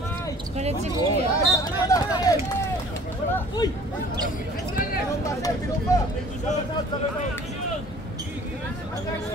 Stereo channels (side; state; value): both; normal; correlation 0.50